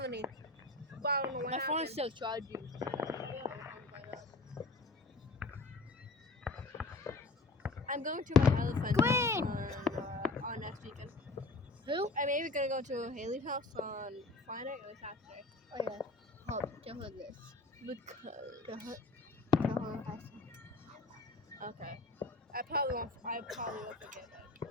But I don't know what My happened. phone's still charging. I'm going to my other friend's Green! house on next weekend. Who? I'm maybe gonna go to Haley's house on Friday or Saturday. Oh yeah. Hold, tell her this. Because. Tell her I said. Okay. I probably won't forget that.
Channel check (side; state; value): right; quieter; 3.2 dB